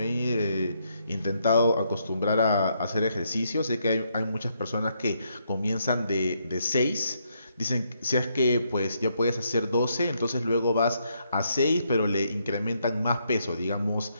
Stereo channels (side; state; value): both; inverted; correlation -0.76